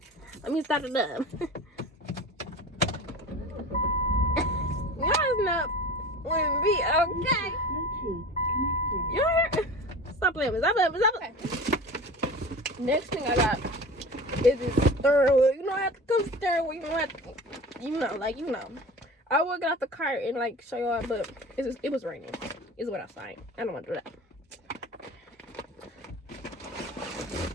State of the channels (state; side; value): normal; both; correlation 0.36